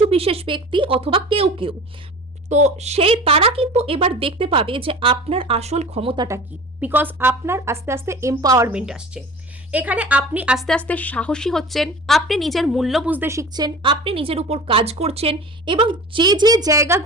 বিশেষ ব্যক্তি অথবা কেউ কেউ, তো সেই তারা কিন্তু এবার দেখতে পাবে যে আপনার আসল ক্ষমতাটা কি, বিকজ আপনার আস্তে আস্তে এম্পাওয়ারমেন্ট আসছে। এখানে আপনি আস্তে আস্তে সাহসী হচ্ছেন, আপনি নিজের মূল্য বুঝতে শিখছেন, আপনি নিজের উপর কাজ করছেন, এবং যে যে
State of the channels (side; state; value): both; normal; correlation 0.38